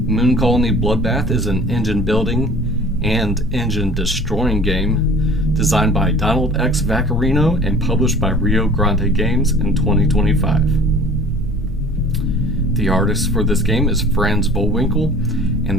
Moon Colony Bloodbath is an engine-building and engine-destroying game designed by Donald X. Vaccarino and published by Rio Grande Games in 2025. The artist for this game is Franz Vollwinkle,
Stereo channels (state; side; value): normal; both; correlation 0.46